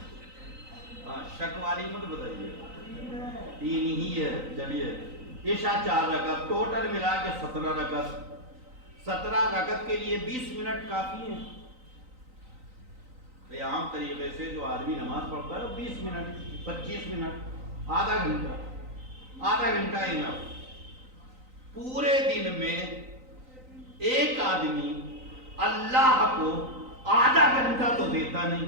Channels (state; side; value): late; left; 3.9 ms